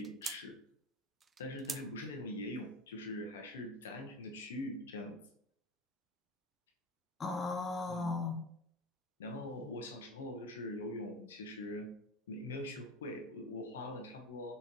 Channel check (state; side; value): normal; both; correlation 0.29